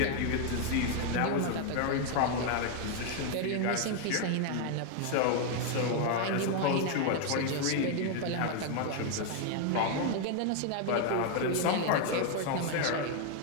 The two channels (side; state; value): both; different; correlation 0.00